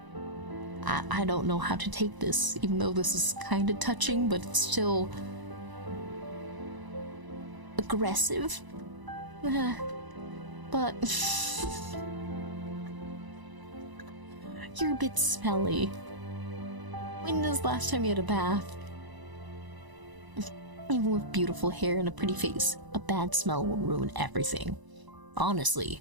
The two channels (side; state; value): left; late; 1.0 ms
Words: I don't know how to take this, even though this is kind of touching, but it's still aggressive. But you're a bit smelly. When was the last time you had a bath? Even with beautiful hair and a pretty face, a bad smell will ruin everything.